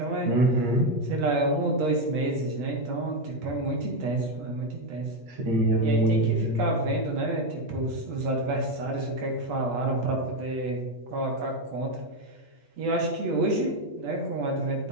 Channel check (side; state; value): left; late; 8.4 ms